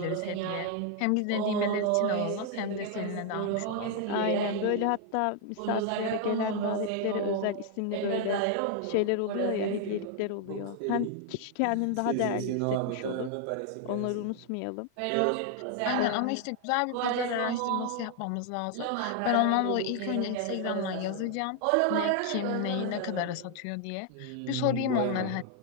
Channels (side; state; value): both; different; correlation 0.00